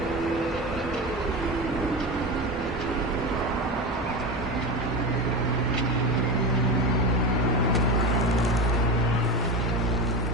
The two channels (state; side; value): normal; both; correlation 0.22